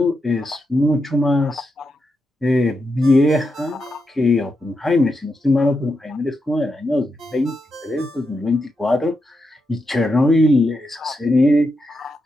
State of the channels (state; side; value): normal; both; correlation 0.85